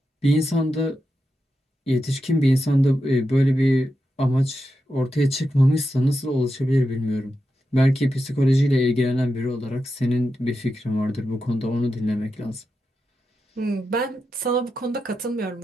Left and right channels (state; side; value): normal; both; correlation 0.88